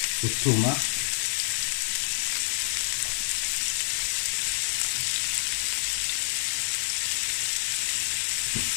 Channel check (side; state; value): right; silent; 60 dB below the other